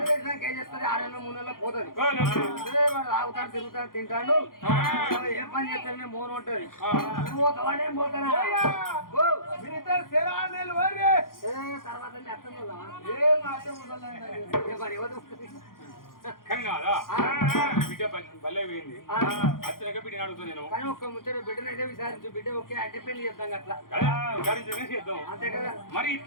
చేసినాక ఏం చేస్తుంది 6 నెలలు 3 నెలలు పోతుంది వాడు తాగుతాడు తిరుగుతాడు తింటాడు ఏం పని చేస్తానే మోన ఉంటది నువ్వు పోతావానే పోతానా తర్వాత కానీ ఒక్క ముచ్చట బిడ్డనైతే విచారించు బిడ్డ ఓకే అంటే పెళ్లి చేద్దాం అట్లా చేద్దాం అంతే కదా మరి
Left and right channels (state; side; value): late; right; 0.91 ms